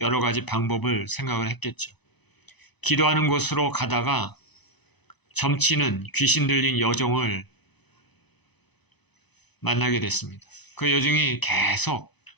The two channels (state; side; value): late; right; 0.99 ms